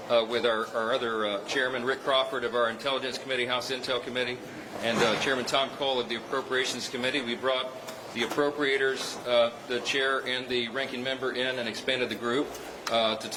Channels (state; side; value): identical; both; correlation 1.00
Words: with our other chairman, Rick Crawford, of our Intelligence Committee, House Intel Committee, and Chairman Tom Cole of the Appropriations Committee. We brought the appropriators, the chair and the ranking member in and expanded the group to